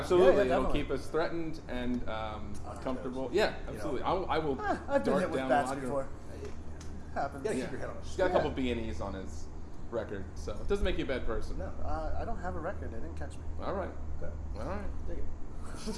Yeah, it'll definitely. keep us threatened and comfortable. Yeah, absolutely. I will I've been dart hit with down bats a lot. before. Happens. Yeah, Yeah. keep your head on a He's got a couple Yeah. B&Es on his record, so it doesn't make you a bad person. No. I don't have a record. They didn't catch me. All right, Okay. all right. Dig it.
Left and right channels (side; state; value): both; identical; correlation 1.00